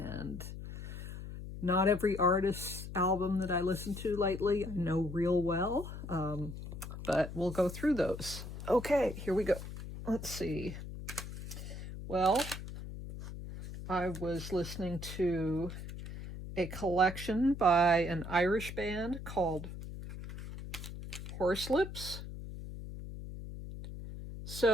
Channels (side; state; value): left; noise; hum, 9 dB below the sound